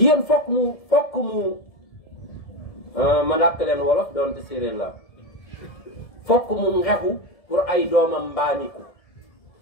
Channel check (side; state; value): right; late; 1.7 ms